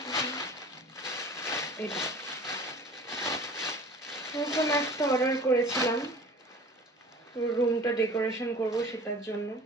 এটা নতুন একটা অর্ডার করেছিলাম, রুমটা ডেকোরেশন করব সেটার জন্য।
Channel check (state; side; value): normal; both; correlation 0.43